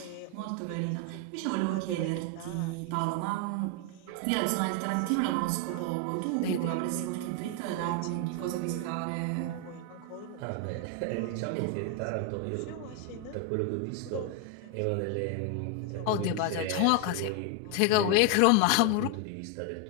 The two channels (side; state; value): both; different; correlation 0.01